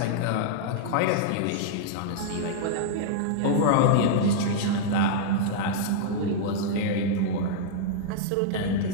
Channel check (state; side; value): different; both; correlation -0.02